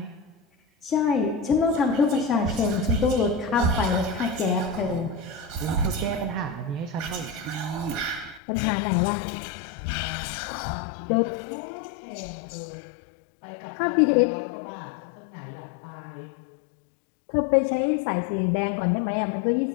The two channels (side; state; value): right; drops out; at 8.4 s